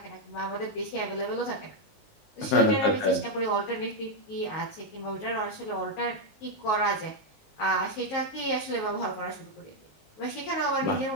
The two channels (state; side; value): late; right; 19 ms